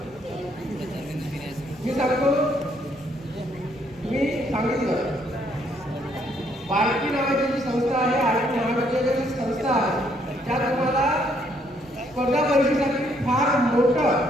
मी सांगतो, मी सांगितलं बारकी नावाची जी संस्था आहे, आरती नावाची जी संस्था आहे, त्या तुम्हाला स्पर्धा परीक्षेसाठी फार मोठं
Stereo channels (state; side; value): normal; both; correlation 0.69